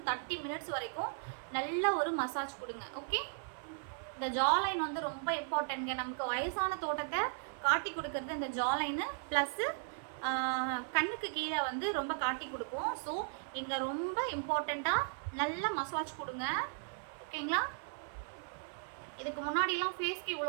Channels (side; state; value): left; silent; 53 dB below the other